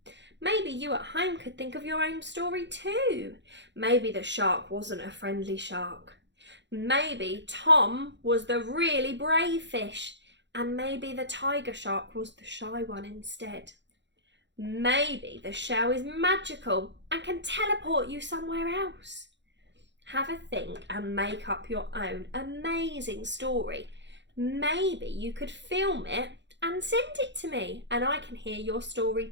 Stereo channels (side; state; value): left; late; 0.52 ms